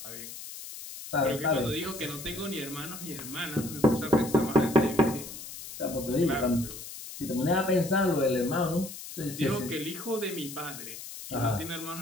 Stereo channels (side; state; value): left; noise; hiss, 11 dB below the sound